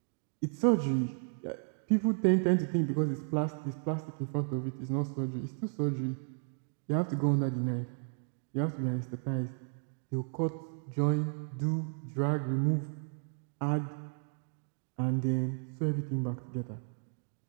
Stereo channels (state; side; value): silent; left; 55 dB below the other